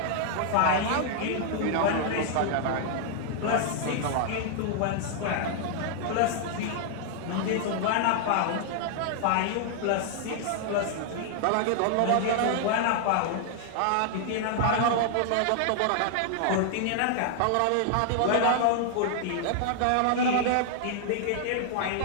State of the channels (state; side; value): different; both; correlation 0.00